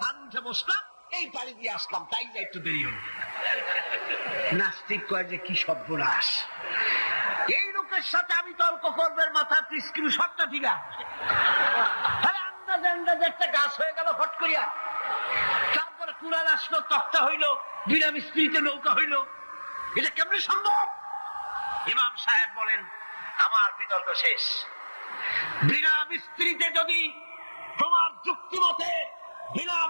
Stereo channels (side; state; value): both; inverted; correlation -1.00